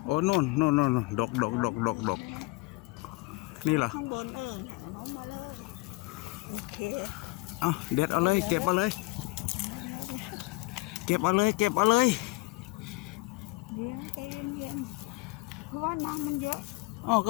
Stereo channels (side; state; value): right; quieter; 24.1 dB